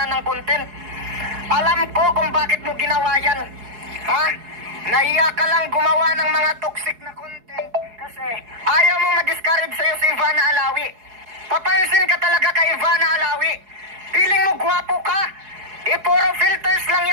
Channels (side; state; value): left; late; 4.8 ms